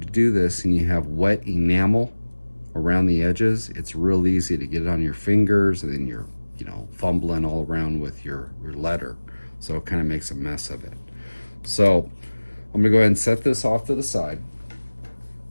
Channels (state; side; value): inverted; both; correlation -1.00